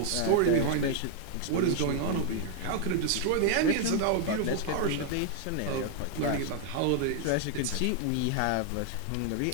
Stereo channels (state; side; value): different; both; correlation 0.00